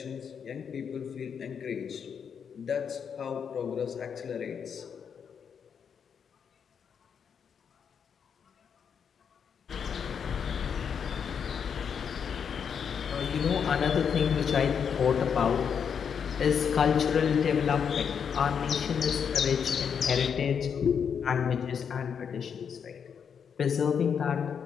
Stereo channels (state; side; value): quieter; right; 7.1 dB